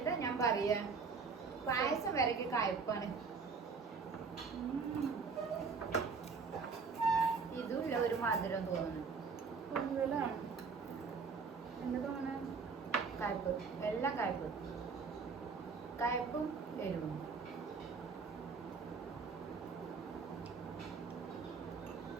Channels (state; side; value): quieter; left; 5.1 dB